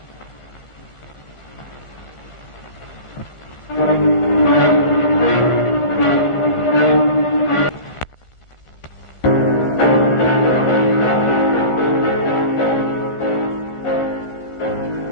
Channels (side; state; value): right; late; 1.4 ms